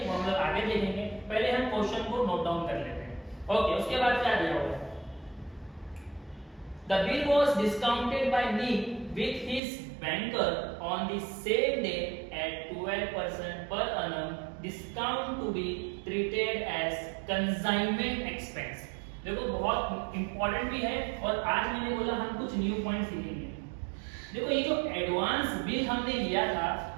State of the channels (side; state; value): left; drops out; at 9.6 s